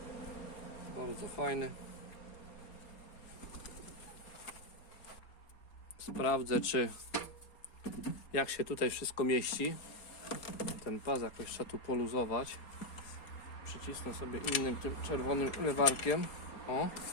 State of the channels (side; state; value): right; late; 4.3 ms